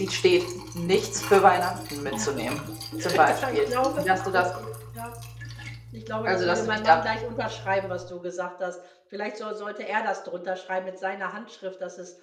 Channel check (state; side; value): identical; both; correlation 1.00